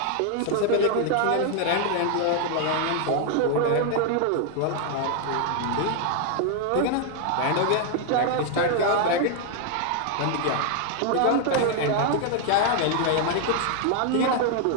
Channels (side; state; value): both; different; correlation 0.00